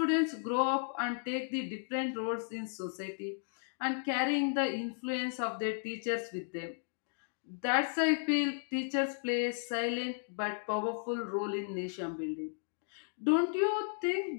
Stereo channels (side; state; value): right; silent; digital silence